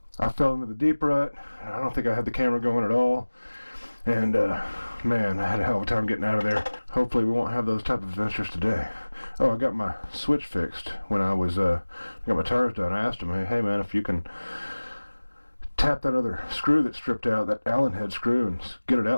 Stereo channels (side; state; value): both; inverted; correlation -1.00